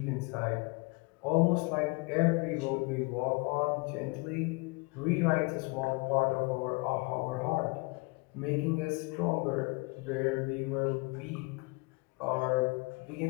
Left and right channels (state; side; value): quieter; right; 27.8 dB